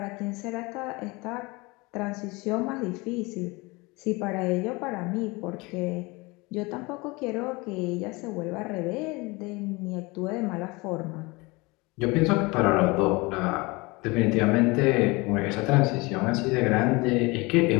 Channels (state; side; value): quieter; right; 24.8 dB